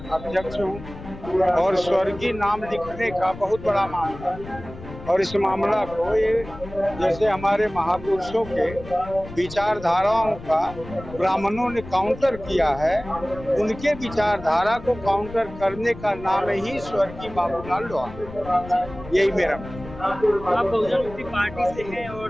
अध्यक्ष हूँ। और स्वर्गीय नाम लिखने का बहुत बड़ा मामला है, और इस मामला को ये जैसे हमारे महापुरुषों के विचारधाराओं का ब्राह्मणों ने काउंटर किया है, उनके विचारधारा को काउंटर करने का नाम ही स्वर्गीय बाबूलाल लोहार। यही मेरा आप बहुजन मुक्ति पार्टी से हैं और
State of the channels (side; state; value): left; noise; rumble, 14 dB below the sound